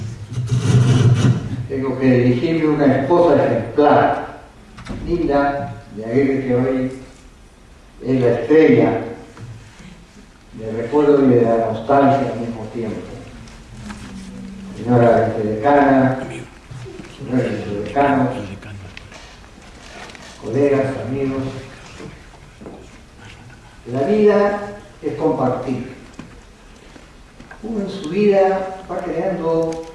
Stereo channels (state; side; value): identical; both; correlation 1.00